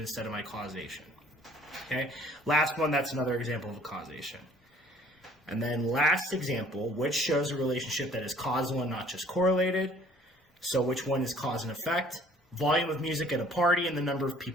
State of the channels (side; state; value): both; normal; correlation 0.56